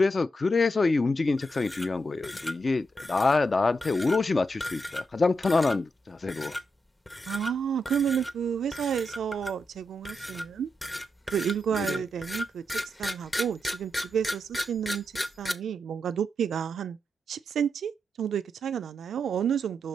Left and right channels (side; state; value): both; normal; correlation 0.84